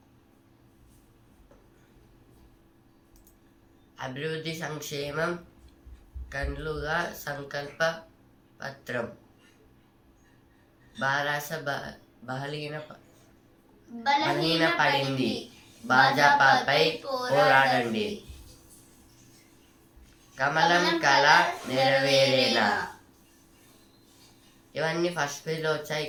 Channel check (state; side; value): identical; both; correlation 1.00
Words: అభివృద్ధి సంక్షేమం కన్నుగా సంకల్ప పత్రం. బారాస బలహీన పడింది, భాజపాపై పోరాడండి. కమలం కళ నెరవేరేనా. ఇవన్నీ ఫస్ట్ పేజ్లో వచ్చాయి,